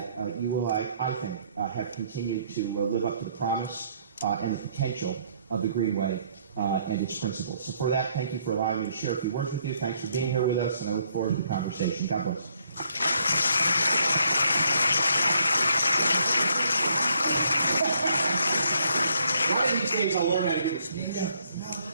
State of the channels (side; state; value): both; inverted; correlation -0.69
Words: you will, I think, have continued to live up to the promise and the potential of the Greenway and its principles. So for that, thank you for allowing me to share a few words with you. Thanks for being here with us, and I look forward to the conversation. God bless. One of these days I'll learn how to get this. Yeah,